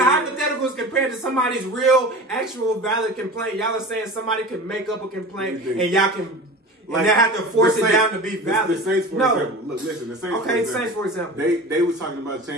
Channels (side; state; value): both; normal; correlation 0.35